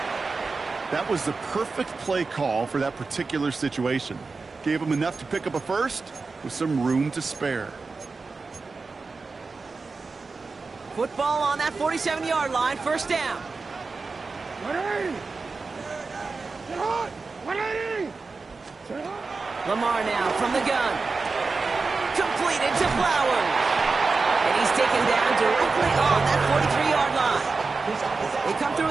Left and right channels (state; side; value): quieter; left; 4.2 dB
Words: That was the perfect play call for that particular situation. Gave him enough to pick up a first with some room to spare. Football on that 47-yard line, 1st down. 180! Get hot! 180! Lamar now from the gun. Completed to Flowers. And he's taken down directly on that 43-yard line. They come through